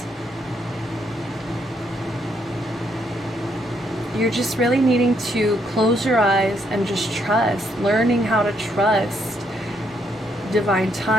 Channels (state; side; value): normal; both; correlation 0.74